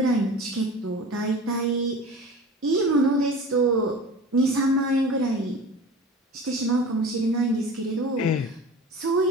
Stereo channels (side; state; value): both; normal; correlation 0.36